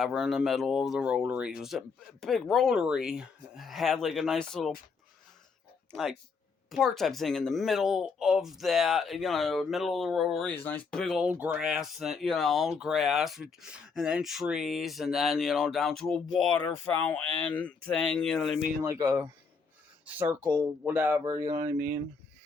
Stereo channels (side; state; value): right; quieter; 5.0 dB